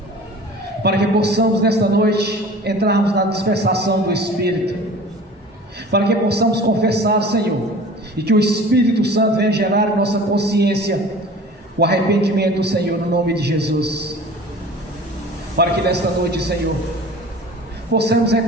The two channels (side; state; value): both; normal; correlation 0.42